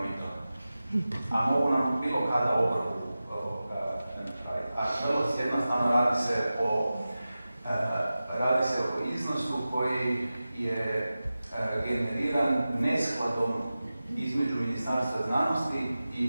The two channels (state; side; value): inverted; both; correlation -0.95